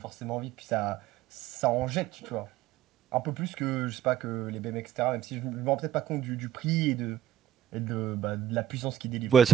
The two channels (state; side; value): quieter; left; 11.5 dB